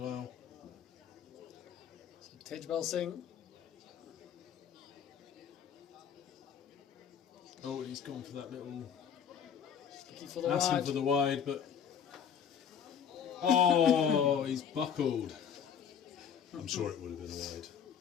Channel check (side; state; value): right; quieter; 7.9 dB